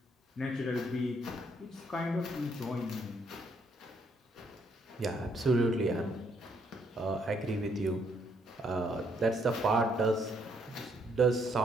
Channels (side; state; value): both; normal; correlation 0.71